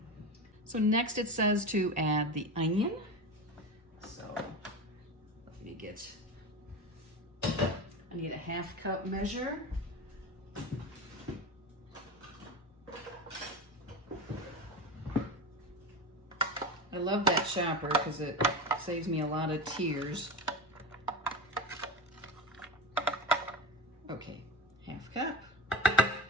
So next it says to add the onion. So let me get, I need a 1/2 cup measure. I love that chopper because it saves me a lot of tears. Okay, 1/2 cup.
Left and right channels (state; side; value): normal; both; correlation 0.24